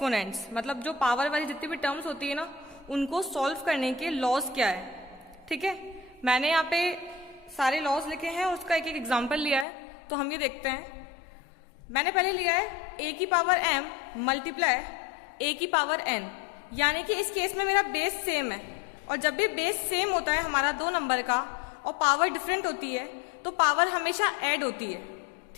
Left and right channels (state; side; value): drops out; right; at 9.7 s